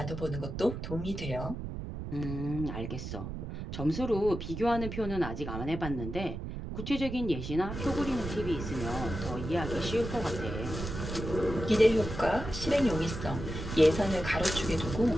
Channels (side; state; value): right; noise; rumble, 6 dB below the sound